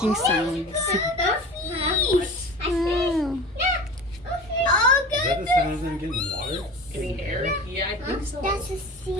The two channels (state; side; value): normal; both; correlation 0.35